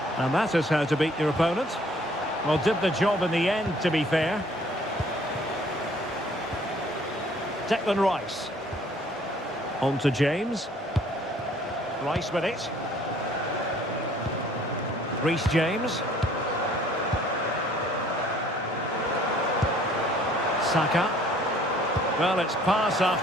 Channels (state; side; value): normal; both; correlation 0.58